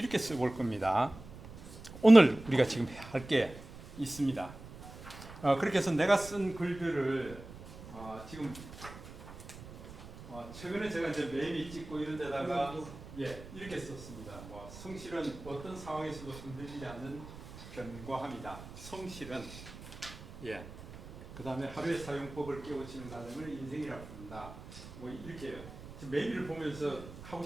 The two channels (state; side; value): noise; right; rumble, 15 dB below the sound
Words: 써볼 겁니다. 오늘 우리가 지금 할 게 있습니다. 그렇게 해서 내가 쓴 글들을 지금 최근에 제가 이제 매미 찍고 이런 데다가 예, 이렇게 썼습니다. 뭐 성실은 어떤 상황에서도 흔들리지 않는 견고함이다. 성실은 예. 그다음에 하루의 사용법을 깨우치는 과정을 인생이라고 부른다. 뭐 이렇게요. 지금 매미를 보면서 하고